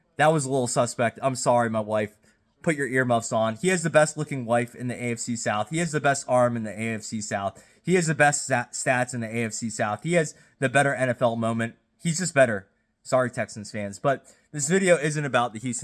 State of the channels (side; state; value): both; identical; correlation 1.00